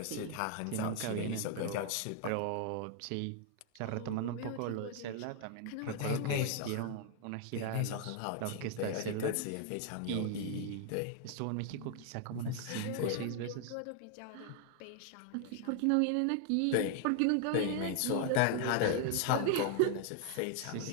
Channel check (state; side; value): different; both; correlation 0.00